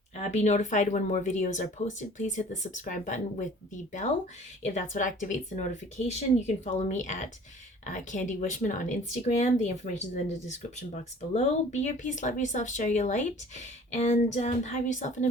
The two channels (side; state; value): both; normal; correlation 0.49